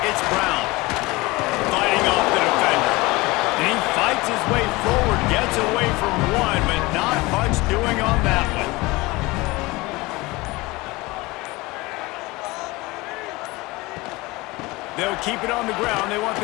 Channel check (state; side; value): quieter; right; 22.2 dB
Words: it's Brown. Fighting off the defender. And he fights his way forward, gets away from one, but not much doing on that one. They'll keep it on the ground. They want